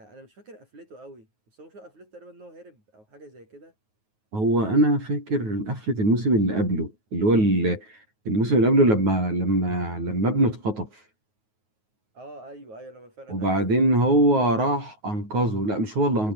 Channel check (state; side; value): late; left; 9.4 ms